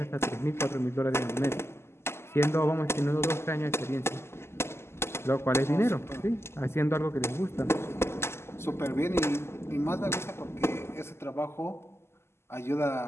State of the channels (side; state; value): right; late; 0.12 ms